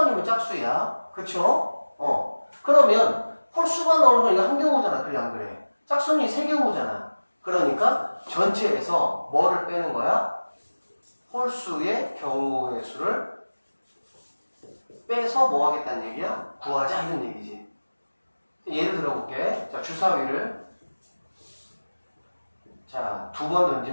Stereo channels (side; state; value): both; inverted; correlation -1.00